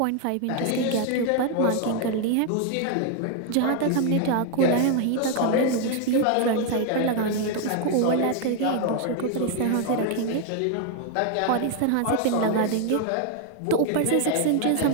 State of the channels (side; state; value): both; different; correlation 0.00